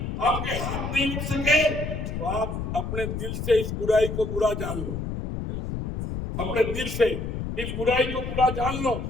آپ کے ہاتھ نہیں اٹھ سکے, تو آپ اپنے دل سے اس برائی کو برا جان لو. اپنے دل سے اس برائی کو برا جان لو.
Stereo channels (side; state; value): left; noise; rumble, 4 dB below the sound